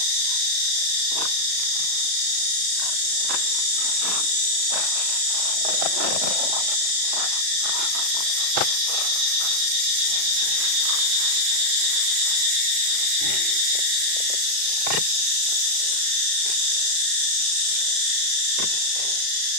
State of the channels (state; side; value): late; left; 36 ms